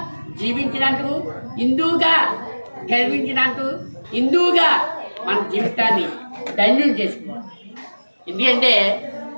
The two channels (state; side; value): inverted; both; correlation -1.00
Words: జీవించినందుకు, హిందూగా గర్వించినందుకు, హిందూగా మన జీవితాన్ని ధన్యం చేసుకోవాలి. ఎందుకంటే